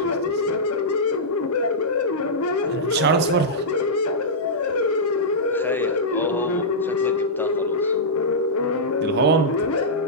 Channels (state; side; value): normal; both; correlation -0.13